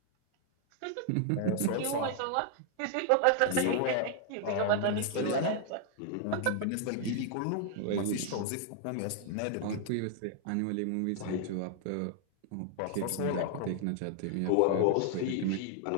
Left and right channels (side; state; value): both; different; correlation 0.00